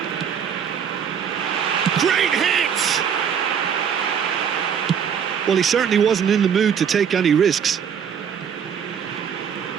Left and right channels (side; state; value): left; quieter; 7.7 dB